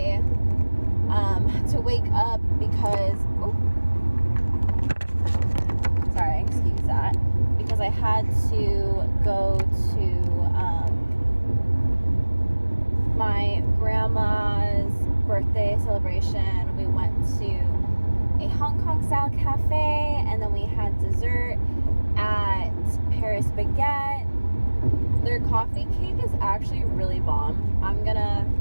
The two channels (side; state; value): both; inverted; correlation -1.00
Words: had to wake up because, sorry, excuse that, because I had to go to my grandma's birthday celebration. We went to a Hong Kong style cafe, and then we had dessert at Paris Baguette. Their coffee cake is actually really bomb. I'm gonna